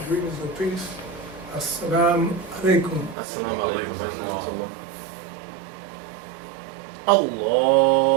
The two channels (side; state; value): left; drops out; at 3.2 s